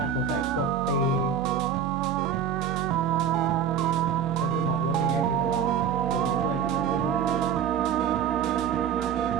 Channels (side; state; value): left; quieter; 7.9 dB